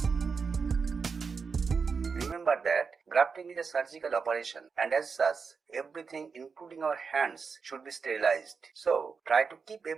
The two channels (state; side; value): quieter; left; 5.3 dB